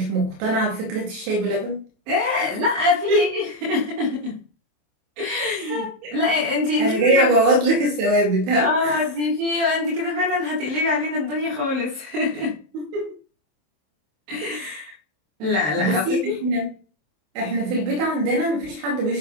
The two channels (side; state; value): left; late; 27 ms